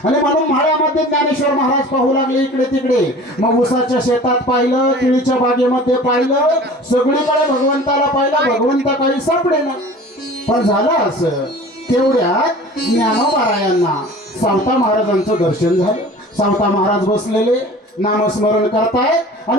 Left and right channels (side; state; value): both; normal; correlation 0.42